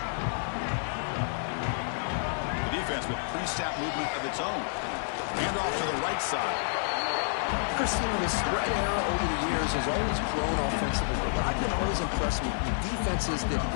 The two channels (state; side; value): silent; right; digital silence